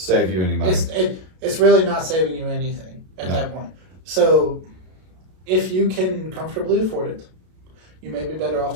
you any money. It's really not saving you anything at that point. So if you can comfortably afford it, you may be better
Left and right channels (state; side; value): late; left; 32 ms